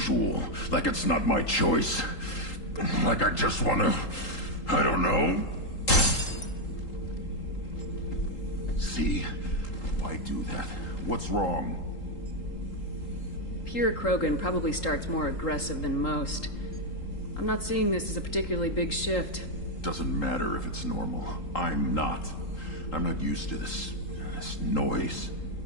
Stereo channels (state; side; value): late; right; 3.8 ms